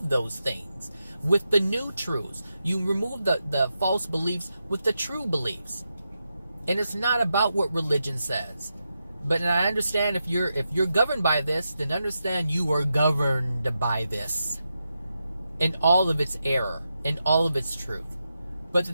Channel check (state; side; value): inverted; both; correlation -0.87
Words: those things with the new truths. You remove the false beliefs with the true beliefs. And it's not about what religion says. But I understand if you're governed by this, then understand you are governed by this in all of its error, in all of its truth. But the